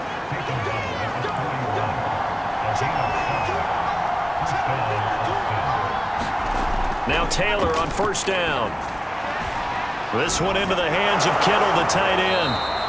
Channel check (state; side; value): identical; both; correlation 1.00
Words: Now Taylor on 1st down. This one into the hands of Kittle, the tight end.